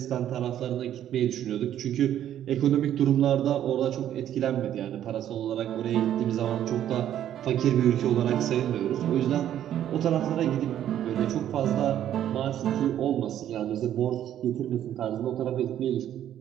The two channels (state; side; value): quieter; left; 11.0 dB